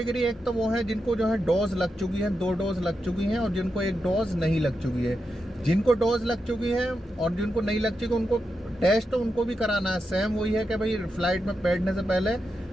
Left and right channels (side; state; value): both; normal; correlation 0.87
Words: एक तो वो है जिनको जो है डोज लग चुकी है, 2 डोज लग चुकी हैं, और जिनको 1 डोज नहीं लग चुकी है। जिनको डोज लग चुकी है और जिनको नहीं लग चुकी, उनको टेस्ट तो उनको भी कराना है। सेम वही है कि भाई फ्लाइट में बैठने से पहले